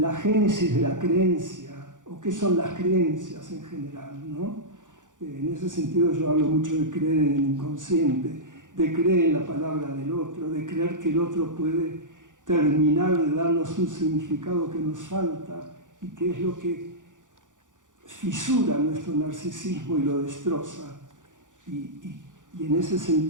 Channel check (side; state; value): left; late; 0.87 ms